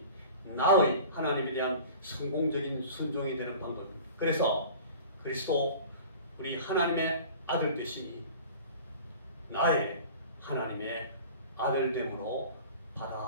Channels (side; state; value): both; inverted; correlation -0.41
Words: 나의 하나님에 대한 성공적인 순종이 되는 방법입니다. 그래서 그리스도, 우리 하나님의 아들 되심이 나의 하나님의 아들됨으로